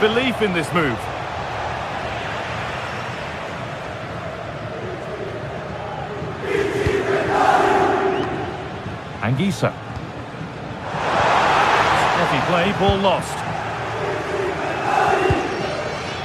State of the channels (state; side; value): identical; both; correlation 1.00